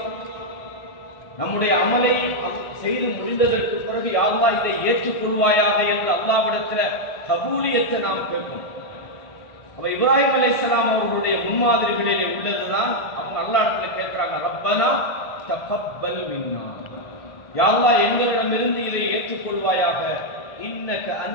நம்முடைய அமலை செய்து முடிந்ததற்கு பிறகு யா அல்லாஹ் இதை ஏற்றுக்கொள்வாயாக என்று அல்லாஹ்விடத்தில் கபூலியத்தை நாம் கேட்கணும். அப்ப இப்ராஹிம் அலைஹிஸ்ஸலாம் அவர்களுடைய முன்மாதிரிகளிலே உள்ளதுதான். அவங்க அல்லாஹ்விடத்துல கேட்கிறாங்க, ரப்பனா தகப்பல் மின்னா, யா அல்லாஹ் எங்களிடமிருந்து இதை ஏற்றுக்கொள்வாயாக. இன்னக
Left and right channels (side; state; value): right; late; 1.5 ms